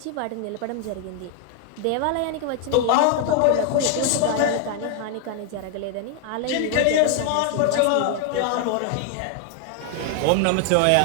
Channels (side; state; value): both; different; correlation 0.00